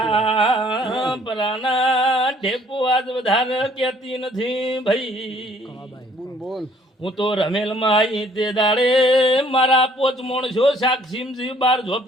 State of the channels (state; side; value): normal; both; correlation 0.60